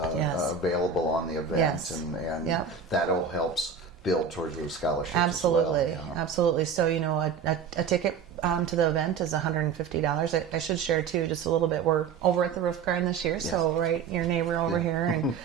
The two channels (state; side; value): quieter; left; 6.3 dB